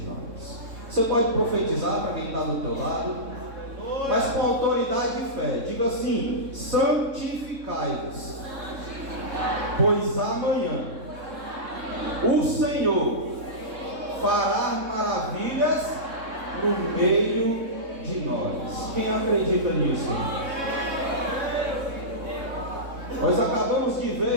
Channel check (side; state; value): left; late; 3.7 ms